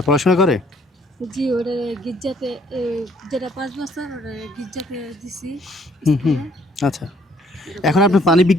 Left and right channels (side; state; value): both; normal; correlation 0.63